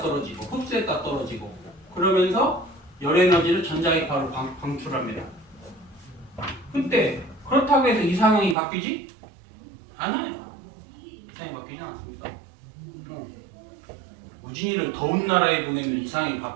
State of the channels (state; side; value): drops out; left; at 8.6 s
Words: 그러면서 열 에너지를 전자기 바로 방출합니다. 근데 그렇다고 해서 이상형이 바뀌지? 않아요. 이상형이 바뀌지 않습니다. 우진이를 더운 나라에 보내면 이상형이